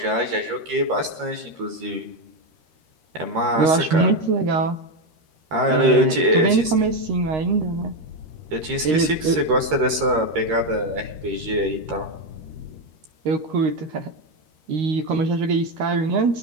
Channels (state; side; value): late; left; 13 ms